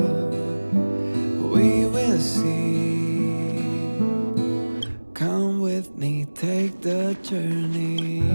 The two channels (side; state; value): both; inverted; correlation -1.00